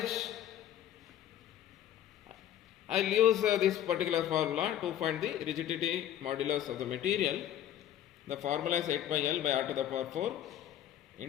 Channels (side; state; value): right; quieter; 11.0 dB